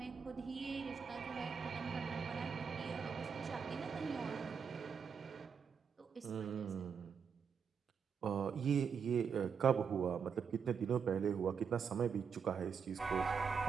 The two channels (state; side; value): quieter; left; 6.5 dB